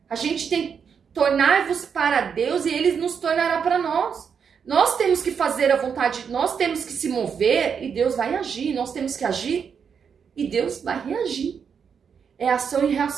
A gente tem que tornar-vos para Deus e Ele nos tornará para nós. Nós temos que fazer a vontade, nós temos que se mover e Deus vai agir. Nós temos que agir e Deus vai reagir. É ação e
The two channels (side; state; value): left; quieter; 6.8 dB